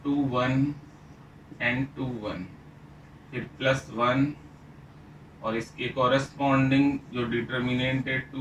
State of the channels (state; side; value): identical; both; correlation 1.00